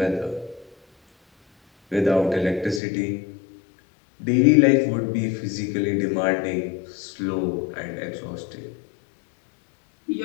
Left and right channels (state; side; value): drops out; right; at 2.8 s